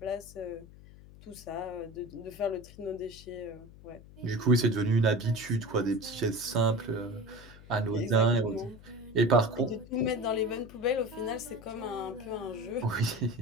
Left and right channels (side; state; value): left; noise; hum, 20 dB below the sound